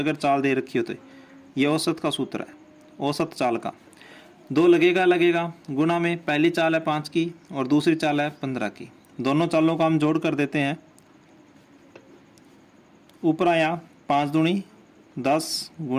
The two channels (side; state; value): both; identical; correlation 1.00